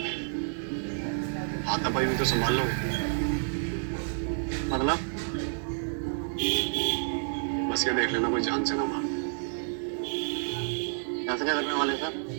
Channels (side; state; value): left; silent; digital silence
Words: हाथापाई भी तो संभाल लो। मतलब बस ये देख लेना कोई जान से ना मार। ऐसे क्या करने वाले सर?